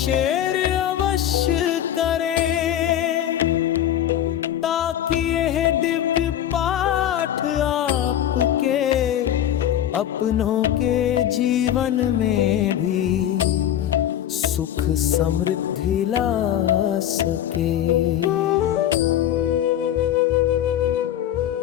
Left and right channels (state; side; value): quieter; right; 11.1 dB